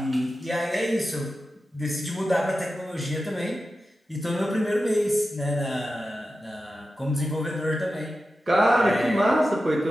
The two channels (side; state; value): both; normal; correlation 0.92